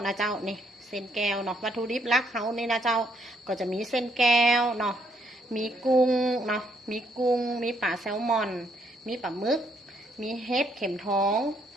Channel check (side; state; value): both; normal; correlation 0.71